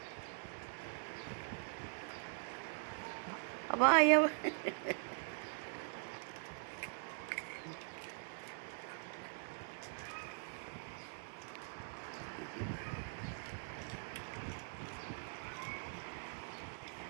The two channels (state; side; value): silent; left; digital silence